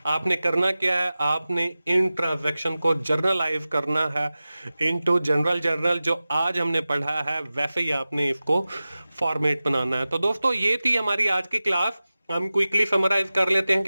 आपने करना क्या है, आपने इन ट्रांजैक्शन को जर्नलाइज करना है इनटू जनरल जर्नल, जो आज हमने पढ़ा है वैसे ही आपने इसको फॉर्मेट बनाना है। तो दोस्तों ये थी हमारी आज की क्लास। हम क्विकली समराइज कर लेते हैं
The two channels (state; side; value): inverted; both; correlation -0.96